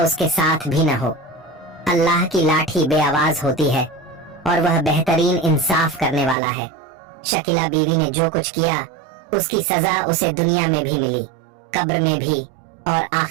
उसके साथ भी न हो। अल्लाह की लाठी बेआवाज होती है और वह बेहतरीन इंसाफ करने वाला है। शकीला बीवी ने जो कुछ किया उसकी सजा उसे दुनिया में भी मिली, कब्र में भी और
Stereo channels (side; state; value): left; drops out; at 6.4 s